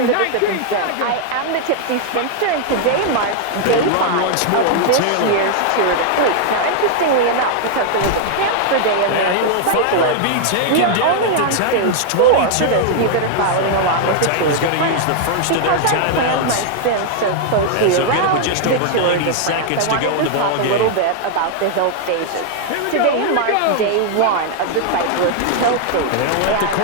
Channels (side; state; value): both; different; correlation 0.00